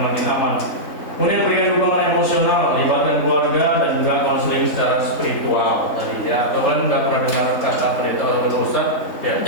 makin aman. Kemudian berikan dukungan emosional, libatkan keluarga dan juga konseling secara spiritual tadi ya. Atau kalian nggak pernah dengar kata pendeta atau ustaz ya,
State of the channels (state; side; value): late; right; 3.6 ms